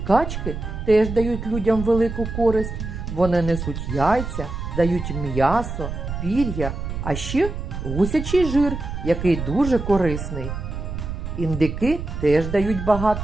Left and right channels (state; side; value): noise; right; rumble, 6 dB below the sound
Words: теж дають людям велику користь. Вони несуть яйця, дають м'ясо, пір'я, а ще гусячий жир, який дуже корисний. Індики теж дають